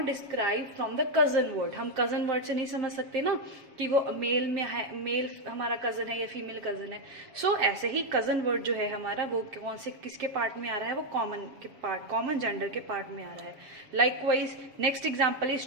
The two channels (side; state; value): left; late; 7.3 ms